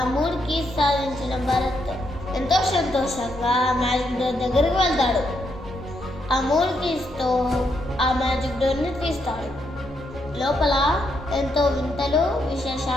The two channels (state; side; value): normal; both; correlation 0.78